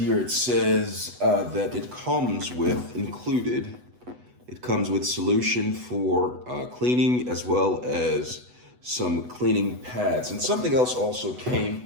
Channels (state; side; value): late; left; 8.1 ms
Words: it says that it comes with solution for cleaning as well as some cleaning pads. And something else also